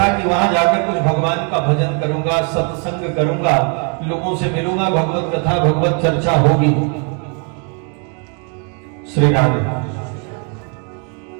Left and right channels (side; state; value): left; quieter; 37.4 dB